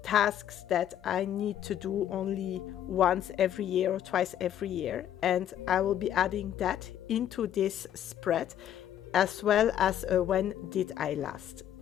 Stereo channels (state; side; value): quieter; right; 10.7 dB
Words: tasks that I need to do only once every year or twice every year, and I will be adding that into this spread, as well as when did I last.